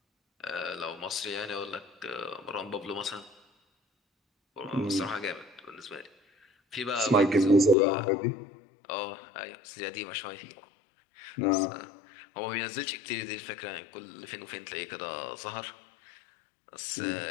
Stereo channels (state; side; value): drops out; right; at 7.8 s